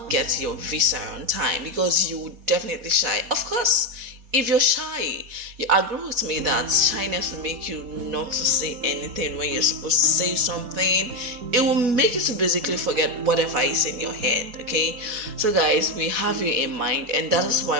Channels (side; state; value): left; late; 4.1 ms